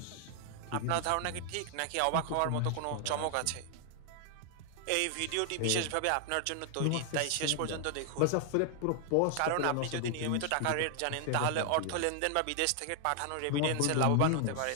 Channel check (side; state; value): both; different; correlation 0.00